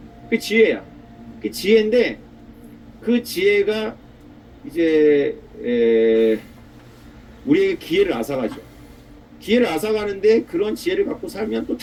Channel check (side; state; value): both; identical; correlation 1.00